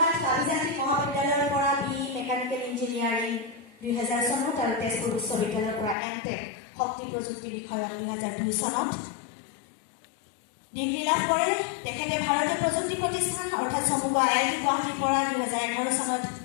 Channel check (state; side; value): drops out; right; at 6.0 s